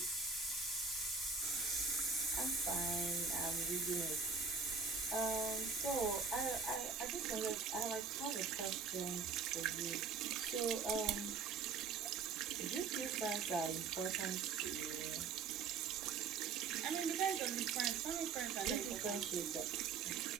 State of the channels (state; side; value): quieter; left; 5.1 dB